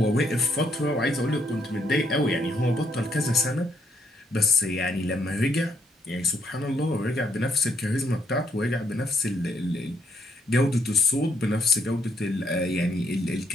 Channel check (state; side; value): normal; both; correlation 0.72